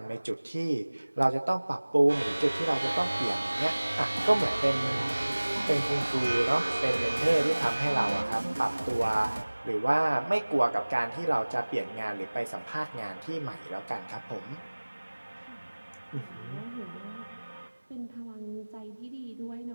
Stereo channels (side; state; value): both; inverted; correlation -1.00